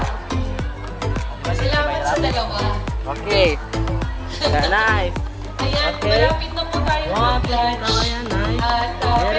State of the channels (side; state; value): both; identical; correlation 1.00